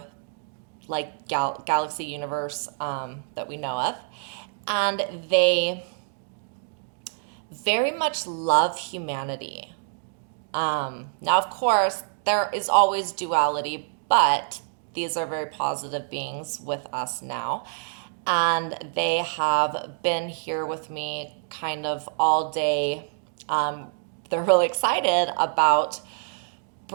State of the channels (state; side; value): silent; left; digital silence